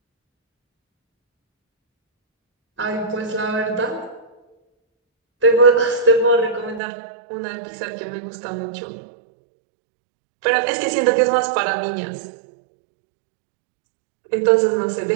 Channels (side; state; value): left; drops out; at 6.8 s